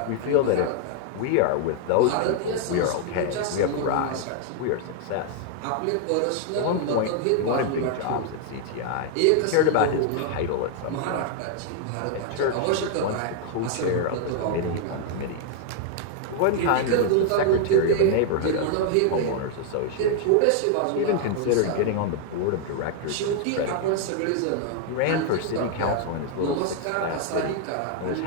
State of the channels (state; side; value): different; both; correlation 0.00